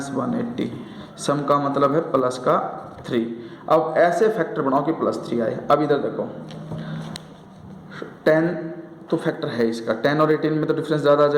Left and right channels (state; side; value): identical; both; correlation 1.00